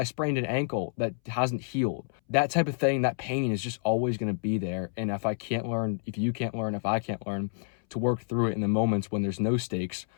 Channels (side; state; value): right; silent; 59 dB below the other